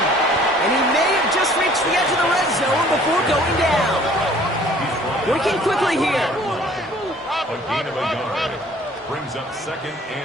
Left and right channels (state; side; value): normal; both; correlation 0.54